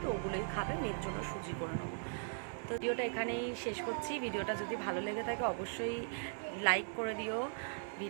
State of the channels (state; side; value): silent; left; digital silence